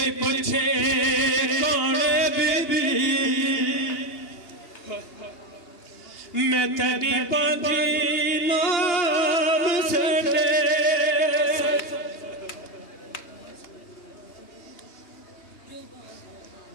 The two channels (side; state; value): right; late; 2.9 ms